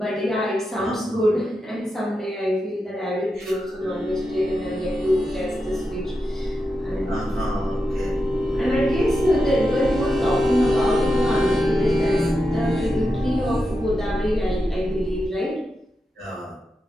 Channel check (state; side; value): normal; both; correlation 0.88